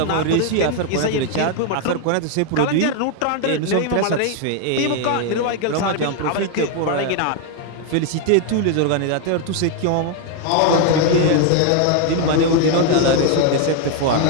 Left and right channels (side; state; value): both; different; correlation 0.01